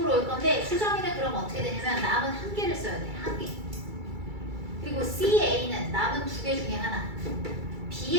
올 건데 수정이는 그럼 어떻게 되냐면 남은 1개를 써야 돼. 1개. 그리고 CA는 남은 2개 중에 하나.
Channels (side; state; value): left; late; 2.3 ms